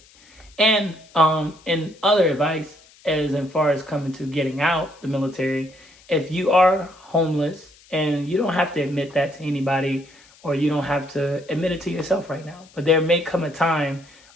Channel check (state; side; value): noise; left; hiss, 27 dB below the sound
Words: And other advice, as far as coming to getting out the military, if you are homeless, and you don't have to admit that to anybody, or you don't have to admit it to yourself right now, but there may come a time